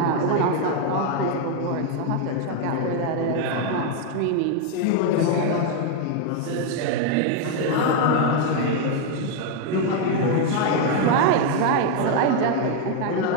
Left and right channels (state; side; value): different; both; correlation 0.01